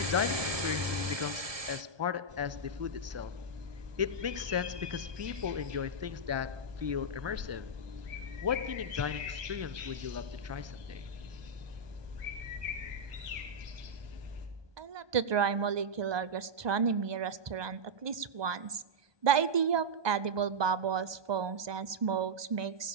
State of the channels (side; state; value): left; late; 1.2 ms